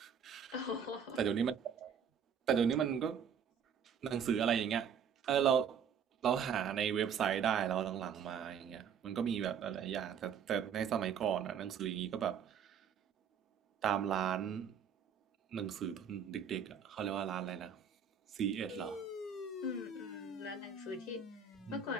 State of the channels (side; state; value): left; quieter; 7.2 dB